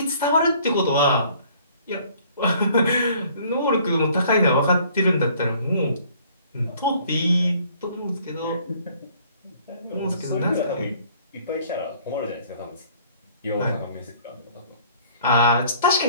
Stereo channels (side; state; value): both; inverted; correlation -0.57